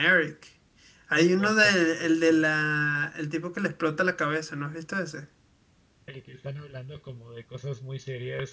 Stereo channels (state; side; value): identical; both; correlation 1.00